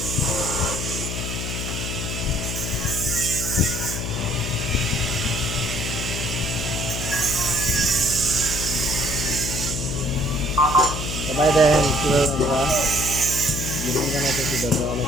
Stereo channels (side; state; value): left; noise; hum, 4 dB below the sound